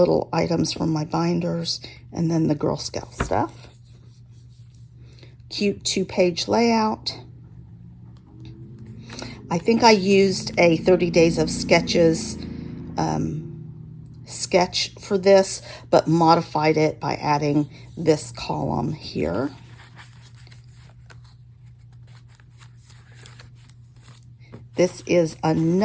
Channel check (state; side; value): identical; both; correlation 1.00